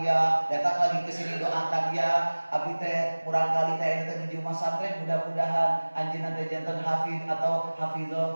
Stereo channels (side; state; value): both; inverted; correlation -1.00